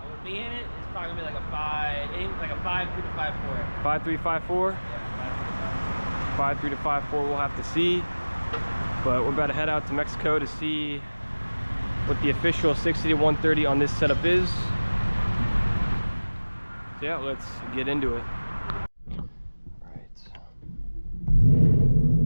with me in it, it's probably gonna be like a 5.3 to 5.4. 5.3, 5.4? Yeah, 5.3 to 5.4, we'll have to see. But we're about to head out to Mexico to see what the official 60 to 130 on this setup is. So yeah, let's get into it.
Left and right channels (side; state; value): both; inverted; correlation -1.00